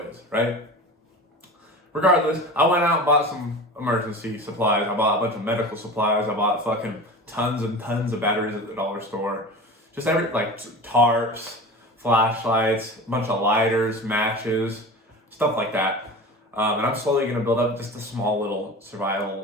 right? Regardless, I went out and bought some emergency supplies. I bought a bunch of medical supplies. I bought fucking tons and tons of batteries at the dollar store. Just like tarps, flashlights, a bunch of lighters, matches, stuff like that. And I'm slowly going to build up just a small little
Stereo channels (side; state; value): both; normal; correlation 0.33